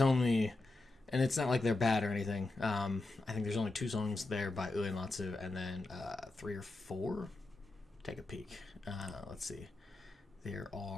and it's not like they're bad or anything. I think there's only 2 songs there by Uematsu, and then 3 or 4. Take a peek. Let's see. There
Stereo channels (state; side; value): quieter; right; 3.1 dB